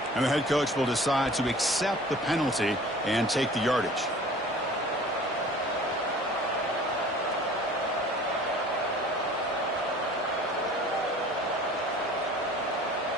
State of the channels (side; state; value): both; normal; correlation 0.46